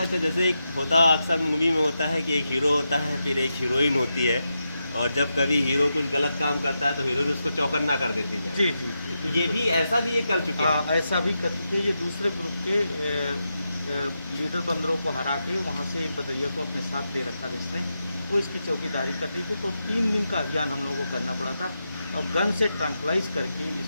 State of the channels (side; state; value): both; inverted; correlation -0.87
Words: अच्छा, जैसे एक होता अक्सर मूवी में होता है कि एक हीरो होता है, फिर एक हीरोइन होती है, और जब कभी हीरो कुछ गलत काम करता है तो हीरोइन उसको चौकन्ना कर देती है। जी जी जी, ये भी ऐसा भी ये कर चुके हैं। हाँ, ऐसा भी कर चुके हैं। ये दूसरे ग्रुप के लीडर बंदरों को हरा के वहाँ से एक बंदरिया को अपने साथ ले रखा था इसने, वो इसकी चौकीदारी करती थी। तो 3 दिन का अभियान हम लोगों को करना पड़ा था, और गन से ट्रंकलाइज करके इस